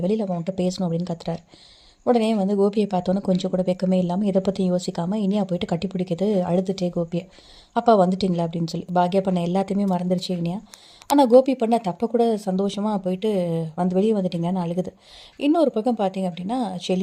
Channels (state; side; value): identical; both; correlation 1.00